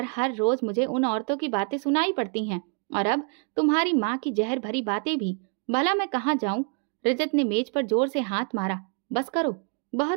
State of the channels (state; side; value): quieter; left; 39.6 dB